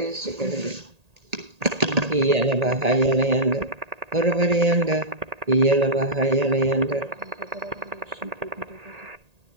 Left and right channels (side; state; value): left; late; 1.8 ms